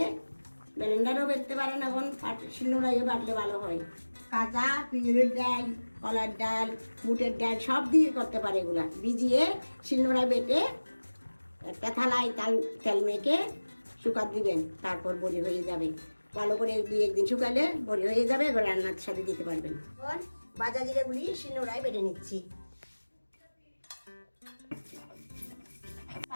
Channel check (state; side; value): inverted; both; correlation -1.00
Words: ব্লেন্ডারও বেটতে পারেন, এখন শিলনোড়াইও বাটলে ভালো হয়। কাঁচা পিঁড়ের ডাল, কলার ডাল, বুটের ডাল সব দিয়ে করতে পারে। এগুলা ভিজিয়ে শিলনোড়ায় বেটে একটা থালায় তেল মেখে শুকাত দিবেন, তারপর বড়ি হয়ে যাবে। ভালো করে 2-1 দিন শুকালে বড়ি হয়ে যাবে, এবার রান্নার সাথে দিতে পারবেন। এখন ভাজা জিরাগুলি শিলনোড়ায় বেটে নিচ্ছি।